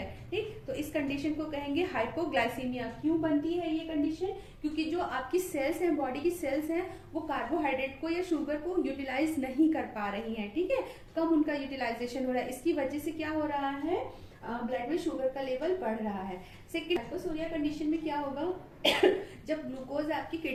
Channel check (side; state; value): both; identical; correlation 1.00